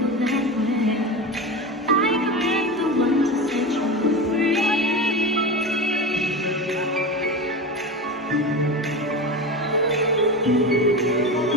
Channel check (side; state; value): both; normal; correlation 0.24